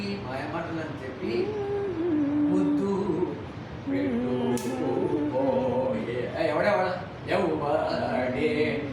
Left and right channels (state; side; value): identical; both; correlation 1.00